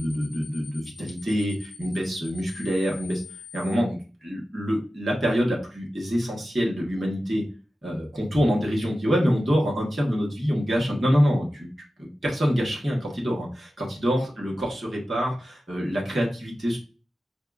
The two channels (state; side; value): normal; both; correlation 0.94